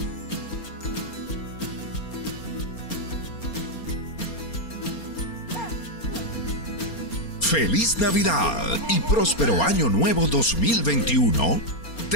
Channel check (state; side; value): late; right; 4.3 ms